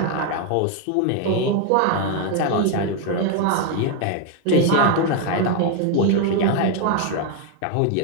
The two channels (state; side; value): different; both; correlation 0.01